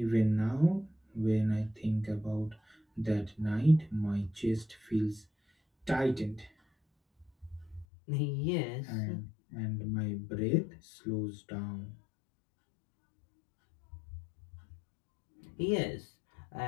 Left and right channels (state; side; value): drops out; right; at 7.9 s